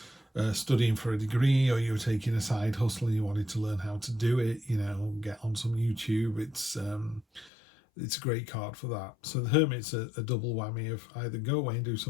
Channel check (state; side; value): drops out; right; at 7.5 s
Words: studying for a degree, or you were taking a side hustle and you wanted to learn how to do it. You know, get on some YouTube. It's a great card for that. So the Hermit's a double whammy of either go away and do